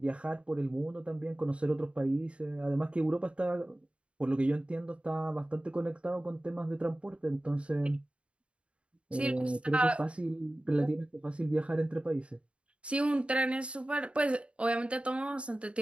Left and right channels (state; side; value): late; left; 0.059 ms